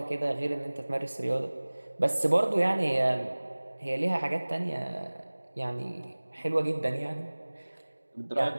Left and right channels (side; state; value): both; inverted; correlation -1.00